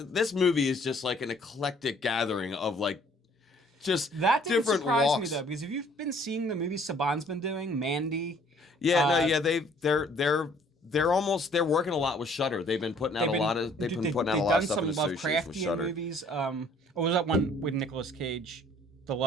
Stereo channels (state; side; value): normal; both; correlation 0.58